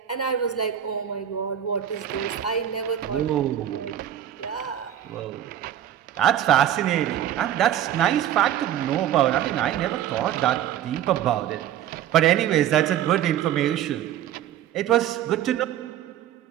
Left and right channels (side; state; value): left; quieter; 10.8 dB